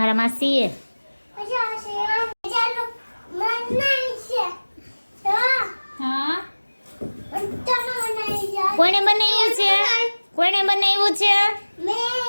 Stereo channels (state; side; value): inverted; both; correlation -1.00